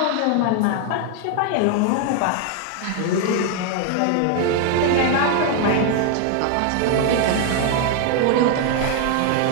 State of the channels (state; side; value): different; both; correlation 0.00